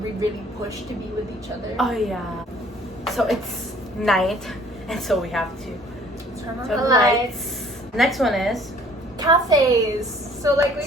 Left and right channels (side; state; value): both; normal; correlation 0.55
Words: we really pushed to be with each other. Oh yeah. So it's night, and so we have to Turn on turn the the lights. Next one is Cafes. So like we